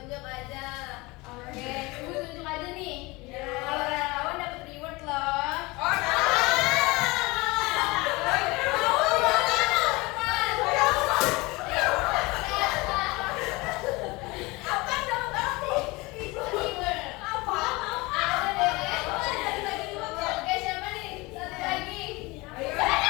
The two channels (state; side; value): quieter; right; 23.5 dB